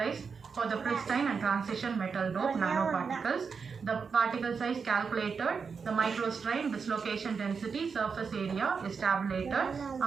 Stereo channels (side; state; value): left; quieter; 5.6 dB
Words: for the pristine and transition metal dope nanoparticles. The particle size calculated, the microstrain, dislocation density, surface area is tabulated.